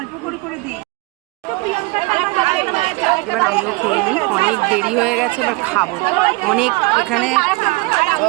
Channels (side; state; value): left; quieter; 25.3 dB